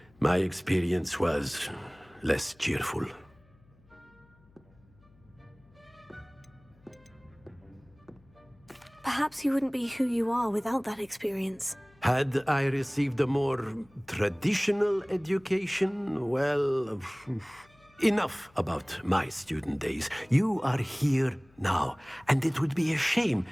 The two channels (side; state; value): left; noise; hum, 30 dB below the sound